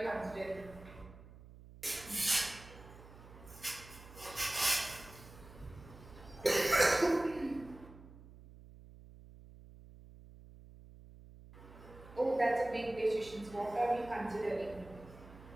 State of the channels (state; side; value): noise; right; hum, 18 dB below the sound